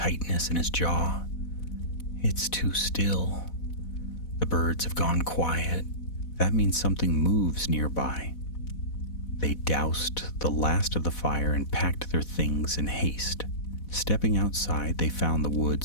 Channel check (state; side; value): late; right; 4.1 ms